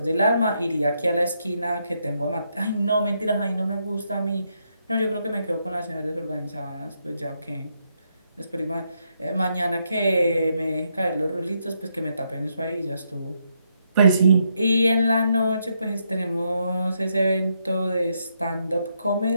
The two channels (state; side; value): inverted; both; correlation -0.78